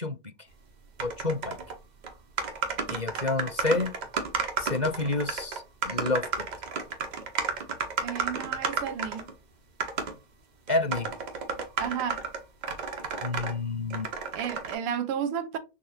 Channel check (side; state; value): left; late; 2.0 ms